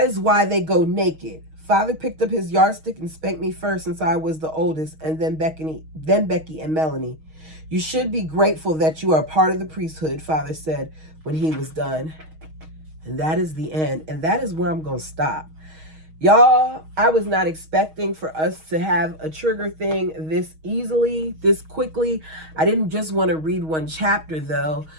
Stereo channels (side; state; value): left; late; 6.3 ms